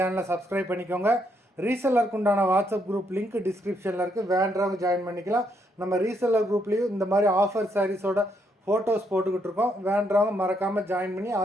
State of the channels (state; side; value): normal; both; correlation 0.75